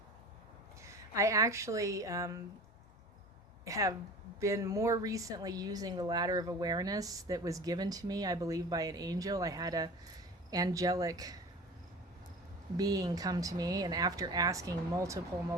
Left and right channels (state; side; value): normal; both; correlation 0.38